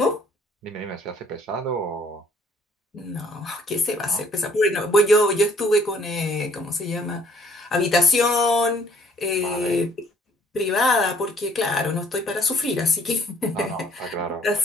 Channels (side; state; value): both; normal; correlation 0.60